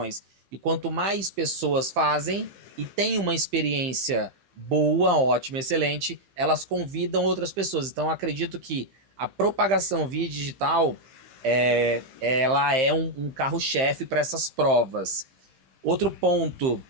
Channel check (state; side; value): late; left; 15 ms